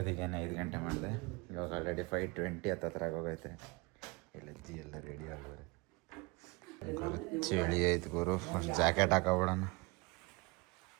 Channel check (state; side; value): quieter; left; 25.8 dB